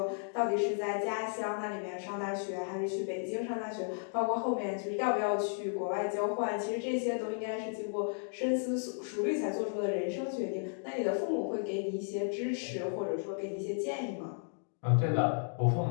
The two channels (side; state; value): right; silent; 55 dB below the other